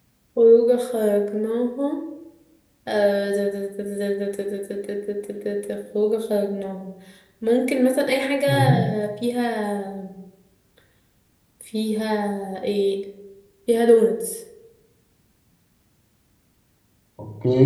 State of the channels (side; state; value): both; identical; correlation 1.00